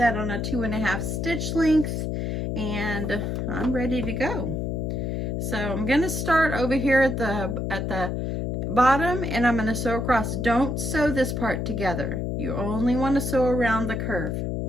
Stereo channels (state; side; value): noise; left; hum, 1 dB below the sound